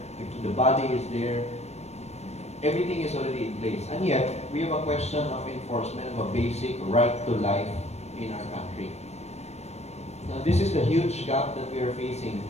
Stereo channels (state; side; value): late; right; 0.31 ms